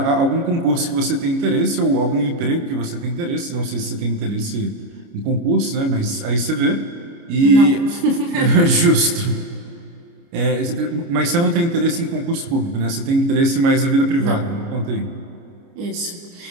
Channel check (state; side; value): late; left; 29 ms